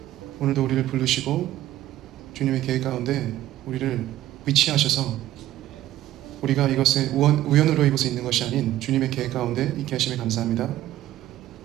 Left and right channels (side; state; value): left; quieter; 14.0 dB